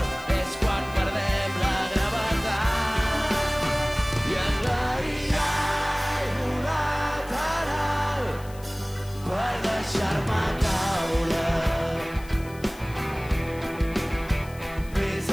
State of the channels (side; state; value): left; noise; hiss, 22 dB below the sound